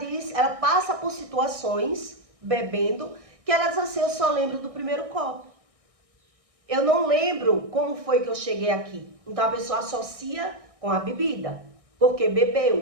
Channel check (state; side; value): late; left; 1.6 ms